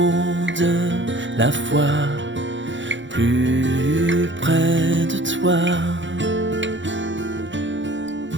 de la foi, plus près de toi.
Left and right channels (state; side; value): late; left; 0.54 ms